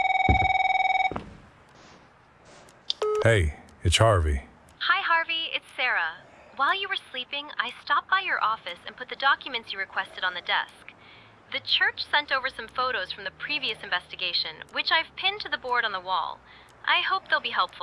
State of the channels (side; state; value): both; identical; correlation 1.00